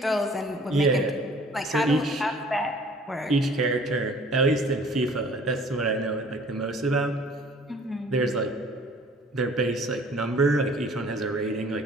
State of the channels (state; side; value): normal; both; correlation 0.52